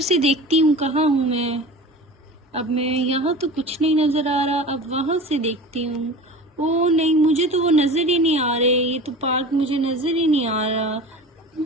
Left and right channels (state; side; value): normal; both; correlation 0.36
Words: देखती हूँ कहाँ हूँ मैं। अब मैं यहाँ तो कुछ नहीं नजर आ रहा, अब वहां से देखती हूँ। ओ नहीं, मुझे तो वो नजर ही नहीं आ रहे। ये तो पार्क मुझे नजर ही नहीं आ रहा।